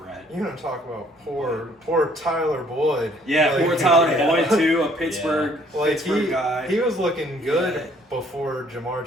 You're gonna talk about poor Tyler Boyd. Yeah, like, poor Tyler Boyd too, a Pittsburgh guy. He was looking good before Jamar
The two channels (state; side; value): normal; both; correlation 0.61